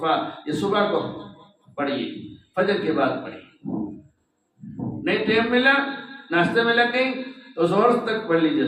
یہ صبح کو پڑھیے، فجر کے بعد پڑھیے۔ نہیں ٹائم ملا، ناشتے میں لگ گئی تو ظہر تک پڑھ لیجیے،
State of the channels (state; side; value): identical; both; correlation 1.00